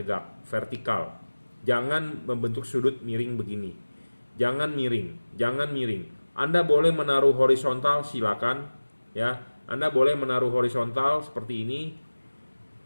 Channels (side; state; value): both; inverted; correlation -1.00